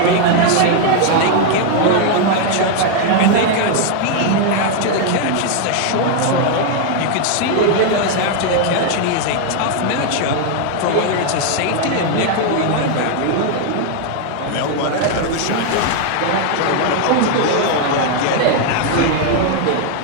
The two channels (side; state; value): both; different; correlation 0.00